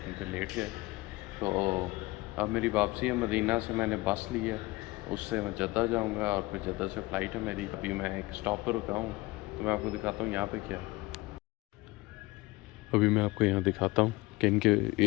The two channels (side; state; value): right; quieter; 21.4 dB